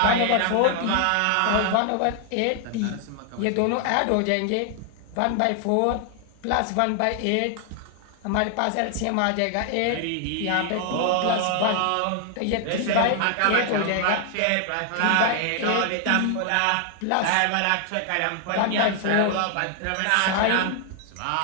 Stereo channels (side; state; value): both; different; correlation 0.00